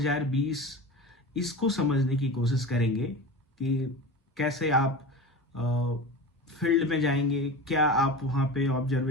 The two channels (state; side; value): normal; both; correlation 0.30